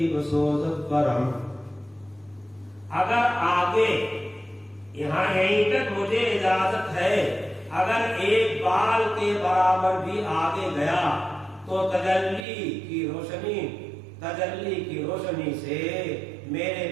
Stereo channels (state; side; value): drops out; left; at 12.5 s